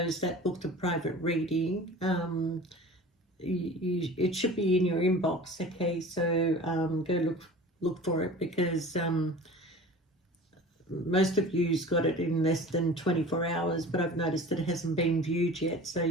that booked a private reading, it should be in your inbox. Okay, so go look for it, because most of you's got it in less than 24 hours, but I've noticed that it hasn't been viewed yet. So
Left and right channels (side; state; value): both; normal; correlation 0.40